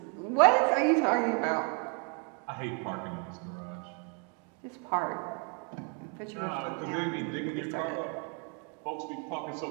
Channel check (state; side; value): quieter; left; 36.7 dB